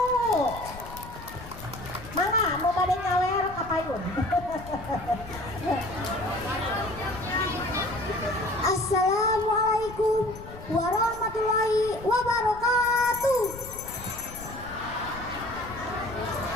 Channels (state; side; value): noise; left; rumble, 14 dB below the sound